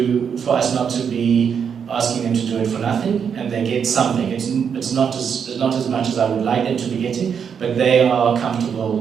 for us not to be asking them to do it for nothing, and they get something. It's not as much as I would like them to be getting, but they are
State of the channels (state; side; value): quieter; left; 7.2 dB